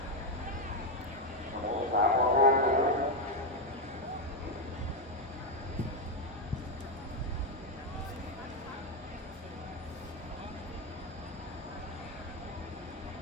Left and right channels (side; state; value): both; normal; correlation 0.06